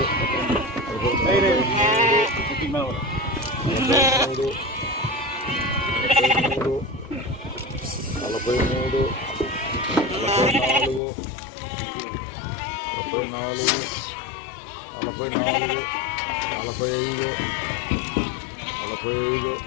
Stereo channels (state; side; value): drops out; right; at 11.0 s